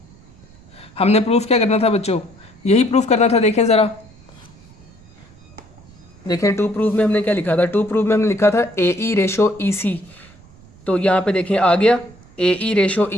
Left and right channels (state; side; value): noise; right; rumble, 25 dB below the sound